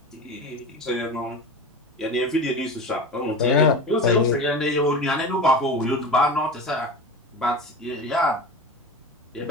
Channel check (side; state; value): both; normal; correlation 0.29